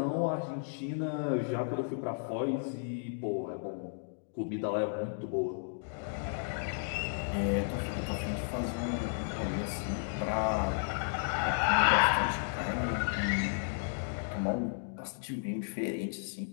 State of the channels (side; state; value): right; silent; digital silence